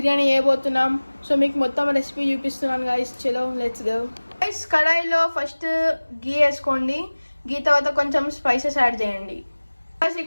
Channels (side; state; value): both; inverted; correlation -1.00